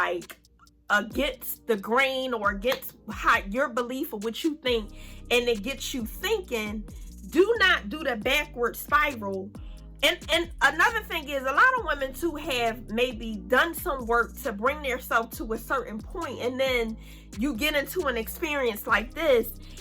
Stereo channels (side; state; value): both; identical; correlation 1.00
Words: against the grain or against how your belief of what you think, and it gets you thinking, do not do the backward spiral. And another thing is, a lot of women too have maybe done some work to bring themselves to a certain point, and then you get into an experience like this